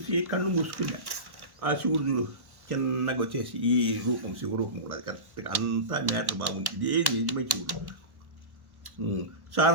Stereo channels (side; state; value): left; late; 1.1 ms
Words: కళ్ళు మూసుకున్నా. ఆ శివుడు చూడు చిన్నగా వచ్చేసి ఈ రూపం శివరూపం కూడా అది కరెక్ట్గా అంతా మ్యాటర్ బాగుంది, ఇదే నిజమే శివుడు.